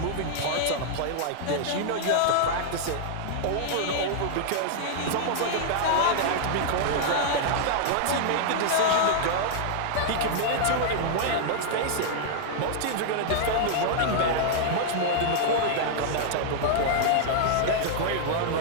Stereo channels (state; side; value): different; both; correlation -0.01